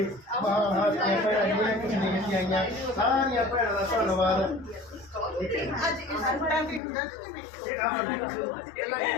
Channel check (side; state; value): right; drops out; at 6.8 s